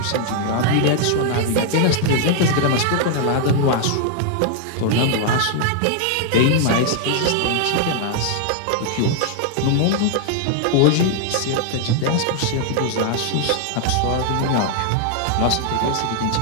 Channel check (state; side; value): different; both; correlation 0.00